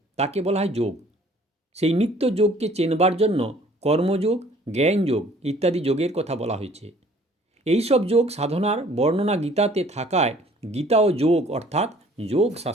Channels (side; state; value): both; normal; correlation 0.55